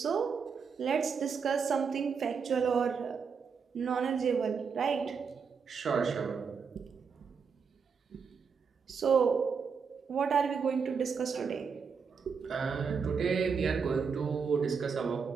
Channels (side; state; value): left; quieter; 5.9 dB